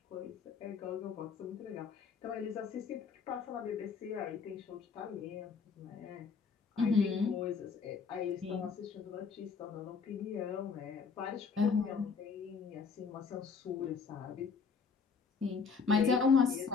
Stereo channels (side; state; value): right; quieter; 5.4 dB